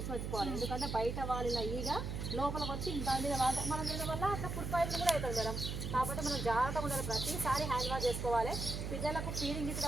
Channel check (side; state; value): right; noise; hum, 4 dB below the sound